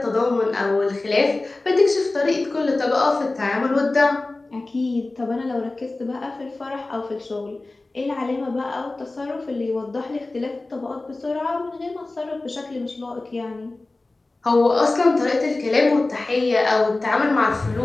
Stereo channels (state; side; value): quieter; right; 3.1 dB